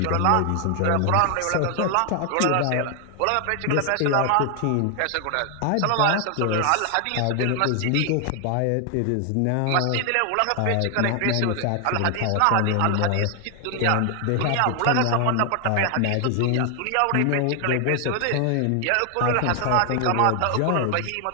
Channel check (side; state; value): both; different; correlation 0.00